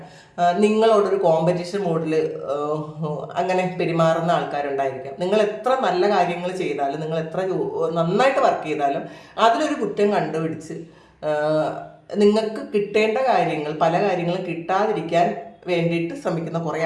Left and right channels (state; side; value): identical; both; correlation 1.00